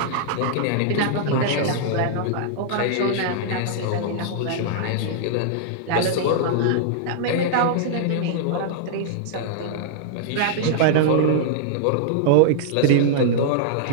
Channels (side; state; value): both; different; correlation -0.01